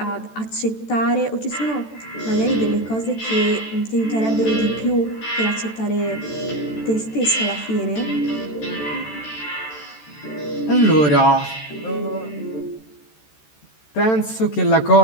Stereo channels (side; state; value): right; late; 14 ms